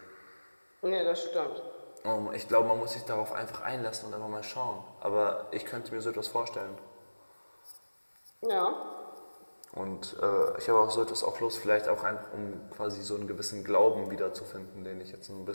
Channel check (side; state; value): both; inverted; correlation -1.00